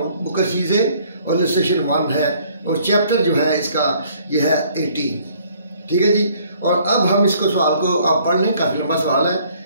बुक चीज़ें और इलस्ट्रेशन 1 है, और चैप्टर जो है इसका ये है 18। ठीक है जी। और अब हम इसको सवाल को आप पढ़ लें, काफ़ी लंबा सवाल है,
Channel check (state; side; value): inverted; both; correlation -0.61